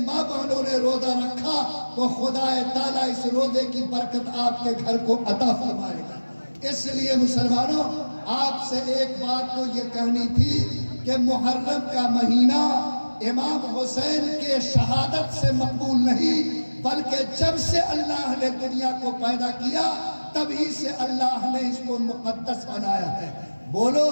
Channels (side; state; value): both; inverted; correlation -1.00